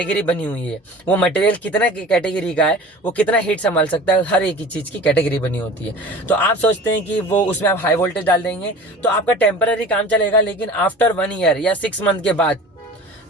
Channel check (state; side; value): normal; both; correlation 0.40